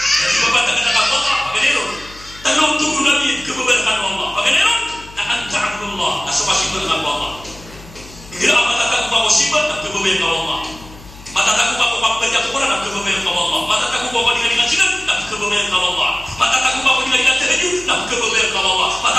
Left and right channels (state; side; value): noise; left; hum, 19 dB below the sound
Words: Ibabantah na nakaku Allah, pagkaniron. Tanong tubo namin, kababarkan Allah. Pagkaniron, na anta'abullah, na sumasibot ng Allah. Hindi ang matatago pa ko sibat, na kababayan ka Allah. Matatago pa ko pagpagya ko na, na kababayan ka Allah. Matatago pa ko nilalingan sinan, na kababayan ka Allah. Matatago pa ko nilalingan tahajud, na kababayan ka Allah.